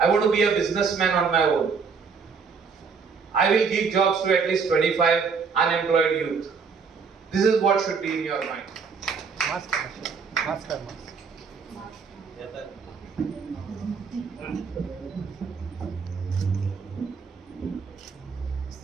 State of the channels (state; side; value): quieter; left; 5.5 dB